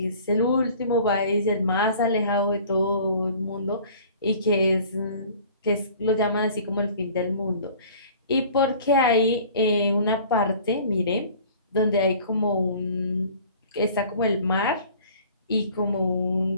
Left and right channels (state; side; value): inverted; both; correlation -0.48